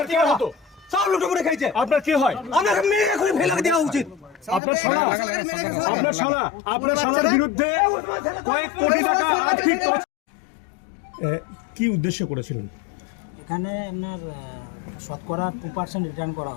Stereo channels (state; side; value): drops out; right; at 4.6 s